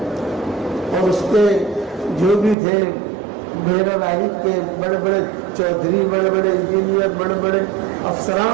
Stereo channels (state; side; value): drops out; left; at 2.6 s